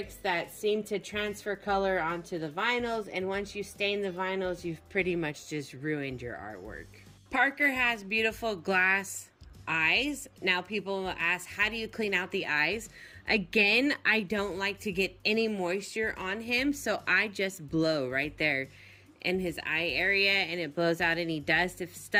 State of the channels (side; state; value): both; identical; correlation 1.00